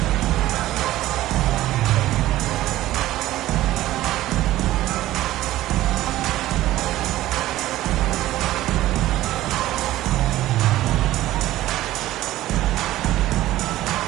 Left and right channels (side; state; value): left; quieter; 15.3 dB